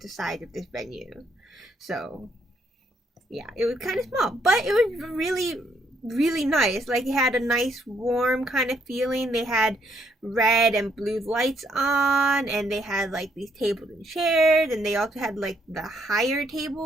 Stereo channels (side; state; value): both; normal; correlation 0.72